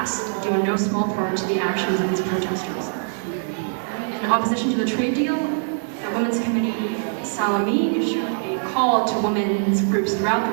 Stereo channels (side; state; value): left; silent; digital silence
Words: due in no small part to the actions of these protesters. In opposition to the trade deal, the Women's Committee Salami issued a call to women's groups throughout the